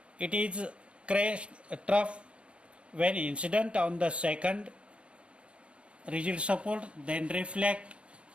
It is crest trough when incident on the second rigid support, then reflect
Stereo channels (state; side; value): late; left; 0.059 ms